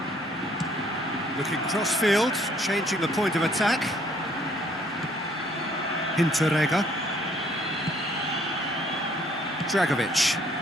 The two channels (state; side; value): normal; both; correlation 0.63